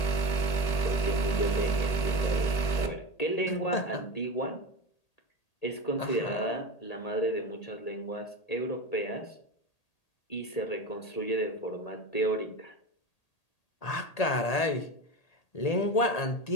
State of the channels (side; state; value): right; late; 1.8 ms